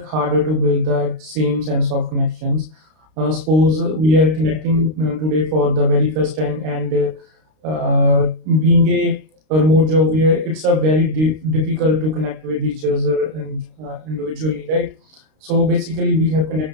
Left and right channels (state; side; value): late; left; 32 ms